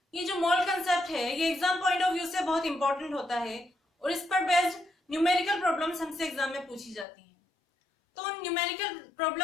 ये जो मोल कंसेप्ट है ये एग्जाम पॉइंट ऑफ व्यू से बहुत इंपॉर्टेंट होता है और इस पर बेस्ड न्यूमेरिकल प्रॉब्लम्स हमसे एग्जाम में पूछी जाती हैं। तो उन न्यूमेरिकल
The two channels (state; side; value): drops out; right; at 7.1 s